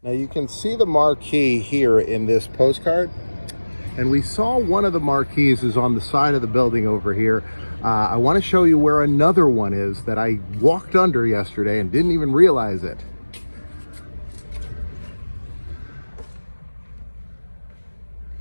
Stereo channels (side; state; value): both; inverted; correlation -1.00